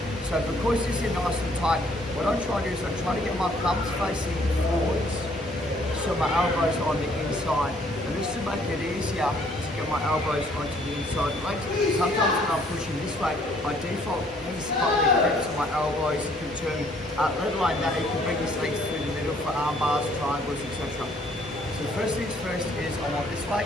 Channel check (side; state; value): both; normal; correlation 0.63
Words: So because this is nice and tight, what I'm trying to do is I'm trying to get my thumbs facing forwards, so my elbows are on the inside. And this will make it easier to get my elbows onto the inside legs. Sometimes when I'm pushing this way, by default, he's got the grips on my elbows, you can turn, let alone that, you can bring his legs through the middle for arm bars, triangles, etc. So first things first is I want this way.